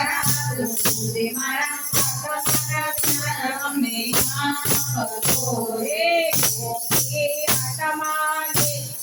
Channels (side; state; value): both; identical; correlation 1.00